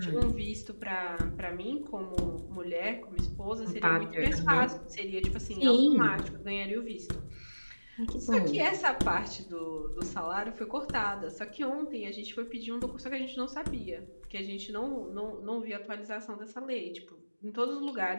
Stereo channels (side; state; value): both; inverted; correlation -1.00